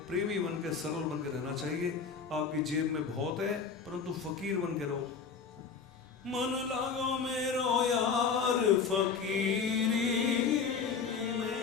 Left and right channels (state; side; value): quieter; right; 5.8 dB